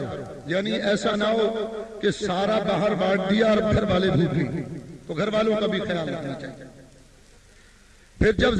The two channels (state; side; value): identical; both; correlation 1.00